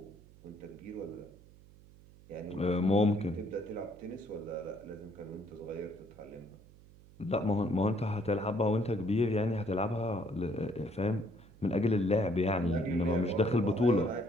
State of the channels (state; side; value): noise; right; hum, 23 dB below the sound